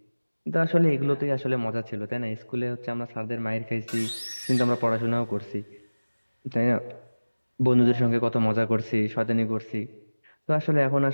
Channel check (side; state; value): both; inverted; correlation -1.00